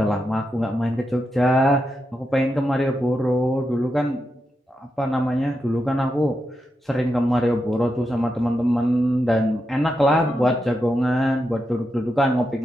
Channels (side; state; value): both; normal; correlation 0.86